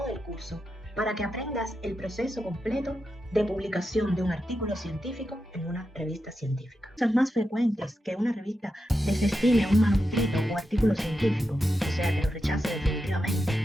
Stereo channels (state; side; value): normal; both; correlation 0.88